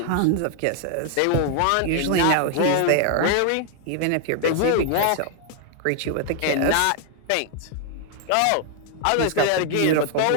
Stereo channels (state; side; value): different; both; correlation 0.00